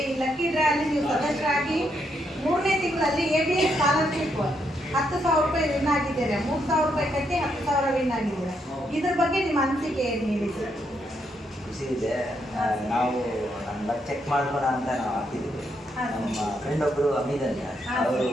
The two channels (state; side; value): normal; both; correlation 0.77